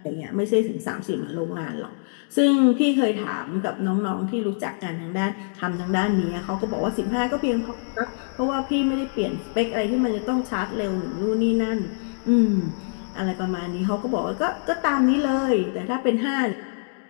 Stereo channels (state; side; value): silent; right; digital silence